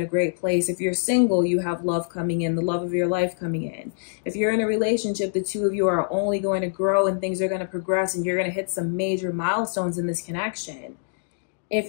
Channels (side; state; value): right; silent; digital silence